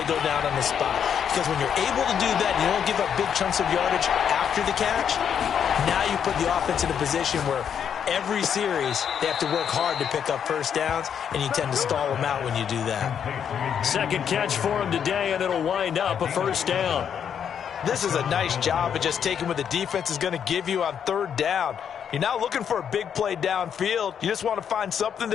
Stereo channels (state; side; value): quieter; right; 8.1 dB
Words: go down on the spot. Because when you're able to do that and you don't give up big chunks of yardage after the catch, now you put the offense in a position where every series they have to work hard to pick up first downs, and you tend to stall them out when you do that. Second catch for him today, and it'll wind up a first down. This is a nice job of just taking what the defense is going to give you on 3rd down. You're not looking for a big play downfield. You just want to find something